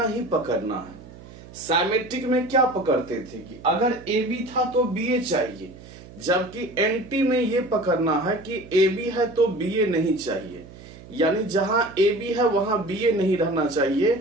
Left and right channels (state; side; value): noise; right; hum, 18 dB below the sound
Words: ही पकड़ना है। साइमेट्रिक में क्या पकड़ते थे कि अगर ए बी था तो बी ए चाहिए, जबकि एंटी में ये पकड़ना है कि ए बी है तो बी ए नहीं चाहिए। यानी जहां ए बी है वहां बी ए नहीं रहना चाहिए,